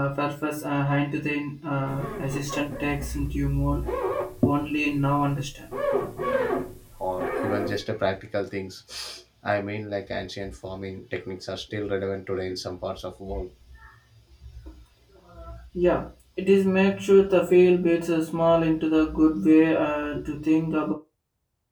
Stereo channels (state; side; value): identical; both; correlation 1.00